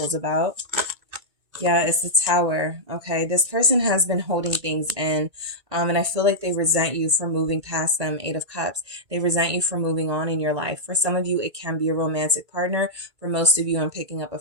about? Yeah, it's the Tower. Okay, this person has been holding things in, and I feel like they resent you for moving past them. Eight of Cups. They resent you for moving on in your life. For some of you, it can be a romantic partner. For most of you, I'm picking up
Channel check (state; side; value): late; left; 2.3 ms